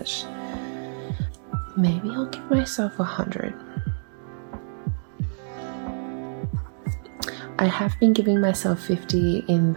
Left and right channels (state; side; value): silent; left; 61 dB below the other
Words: Maybe I'll give myself 100. I have been giving myself 50 in